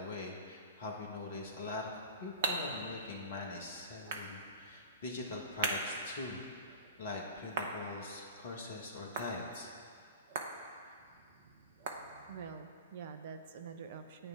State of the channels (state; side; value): inverted; both; correlation -0.35